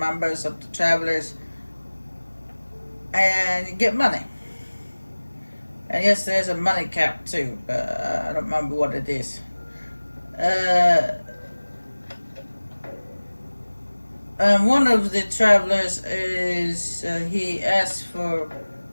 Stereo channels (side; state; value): both; inverted; correlation -1.00